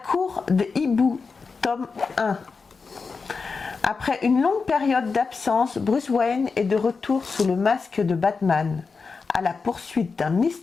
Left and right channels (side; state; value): right; quieter; 4.8 dB